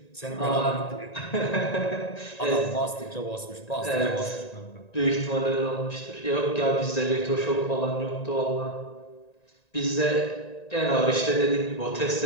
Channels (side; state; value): right; late; 1.9 ms